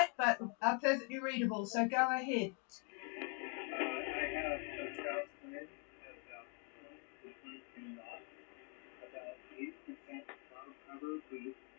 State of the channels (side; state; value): right; quieter; 37.1 dB